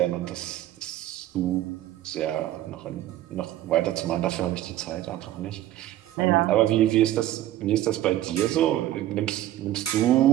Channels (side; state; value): left; quieter; 13.8 dB